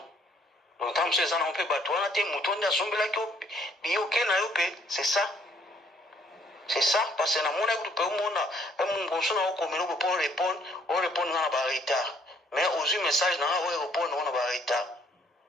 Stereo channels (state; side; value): normal; both; correlation 0.64